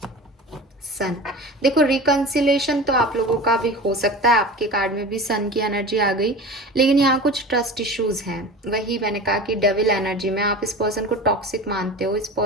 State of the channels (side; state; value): both; normal; correlation 0.34